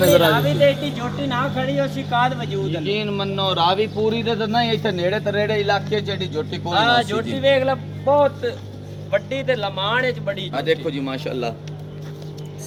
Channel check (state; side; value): identical; both; correlation 1.00